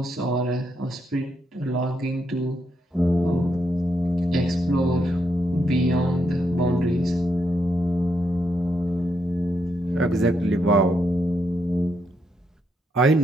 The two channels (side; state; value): both; normal; correlation 0.79